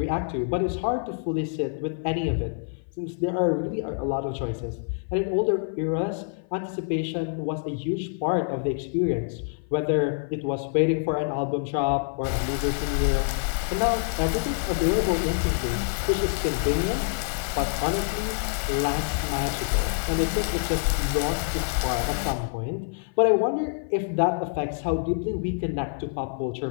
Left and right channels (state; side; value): silent; right; 55 dB below the other